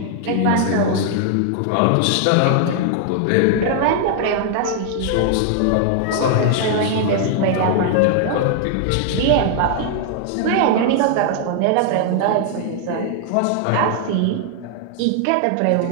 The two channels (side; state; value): both; different; correlation 0.00